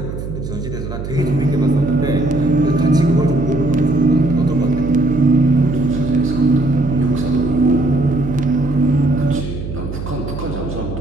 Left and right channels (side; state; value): right; noise; hum, 7 dB below the sound